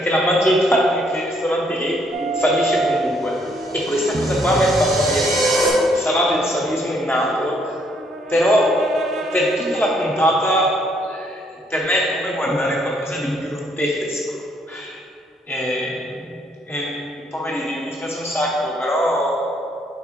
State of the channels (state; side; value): normal; both; correlation 0.69